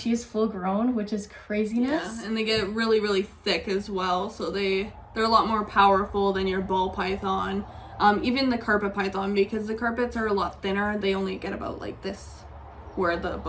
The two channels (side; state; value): both; identical; correlation 1.00